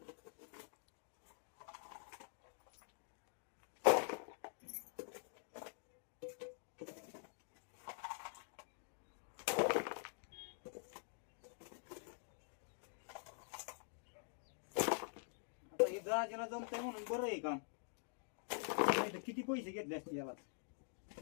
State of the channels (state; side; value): silent; right; digital silence